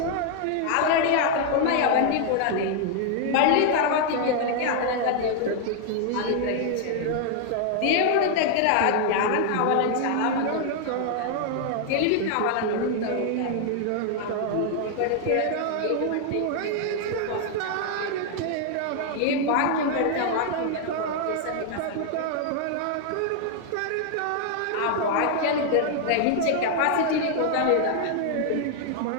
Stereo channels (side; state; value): both; different; correlation 0.00